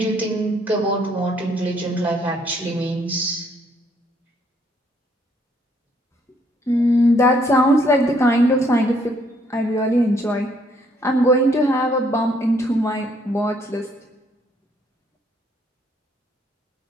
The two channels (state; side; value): normal; both; correlation 0.68